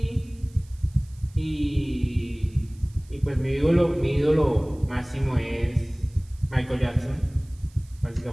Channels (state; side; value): noise; right; hiss, 28 dB below the sound